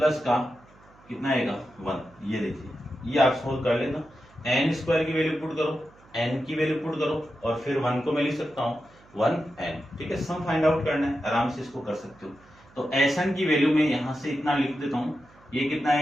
का कितना आएगा 1, ये देखिए, ये आप सोल्व कर लेना। n² की वैल्यू पुट करो, n की वैल्यू पुट करो, और फिर 1 को मैं लिख सकता हूँ 1n, ठीक है। सम फाइंड आउट करना है, आराम से इसको कर सकते हो। तो Sn की वैल्यू में यहां से इतना लिख देता हूं, ये कितना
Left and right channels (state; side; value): noise; right; hum, 27 dB below the sound